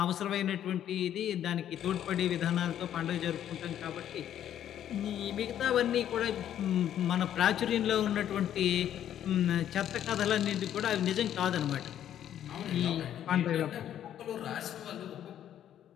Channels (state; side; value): quieter; right; 10.7 dB